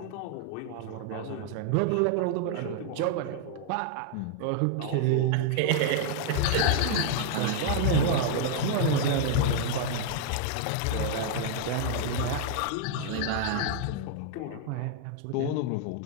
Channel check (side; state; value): both; different; correlation 0.00